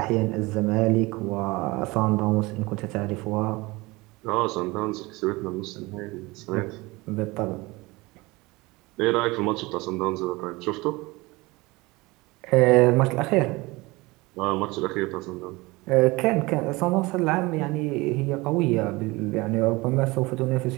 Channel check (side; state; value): left; quieter; 22.8 dB